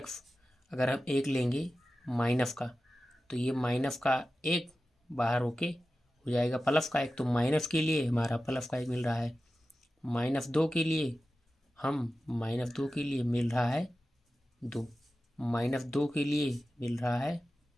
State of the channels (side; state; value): both; normal; correlation 0.94